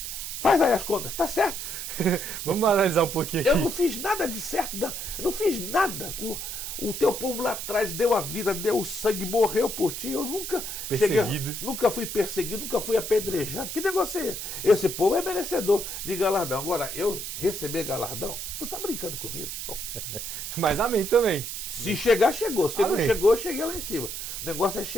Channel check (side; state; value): right; noise; hiss, 6 dB below the sound